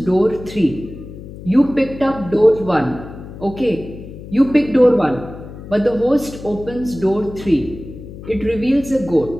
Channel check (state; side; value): noise; left; hum, 14 dB below the sound